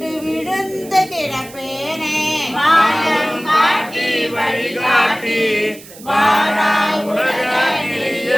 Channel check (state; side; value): noise; right; hiss, 19 dB below the sound